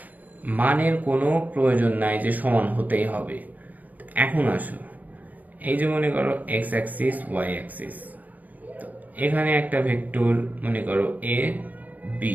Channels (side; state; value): left; late; 0.079 ms